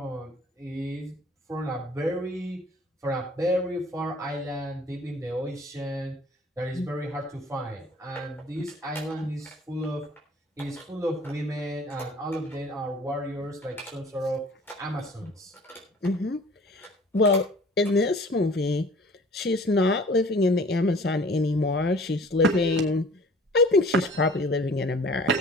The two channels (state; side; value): normal; both; correlation 0.50